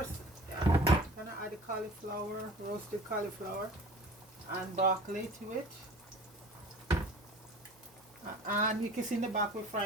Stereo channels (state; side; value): normal; both; correlation 0.43